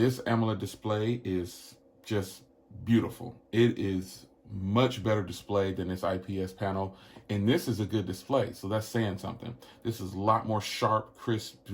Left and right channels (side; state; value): both; identical; correlation 1.00